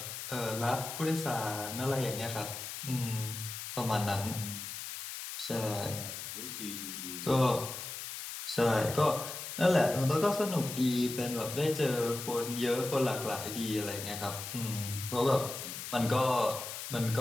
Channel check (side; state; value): left; noise; hiss, 7 dB below the sound